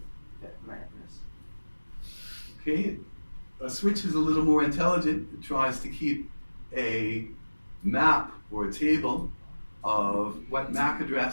that MAC address. Okay, a switch is a little more intelligent. It tries to keep a map or a table of what MAC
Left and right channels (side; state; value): both; inverted; correlation -1.00